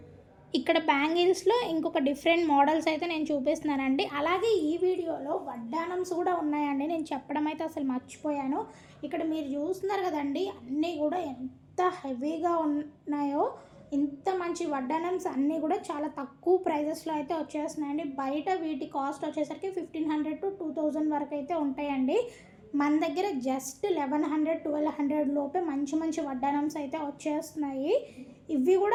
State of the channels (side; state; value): both; identical; correlation 1.00